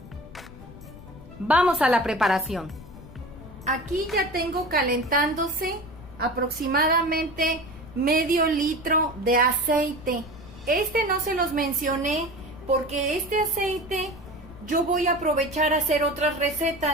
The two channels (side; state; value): left; noise; rumble, 17 dB below the sound